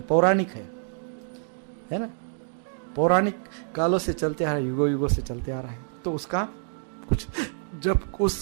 पौराणिक है ना. पौराणिक कालों से चलते आ रहा है, युगों से चलते आ रहा है. तो उसका कुछ जब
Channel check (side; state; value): left; silent; digital silence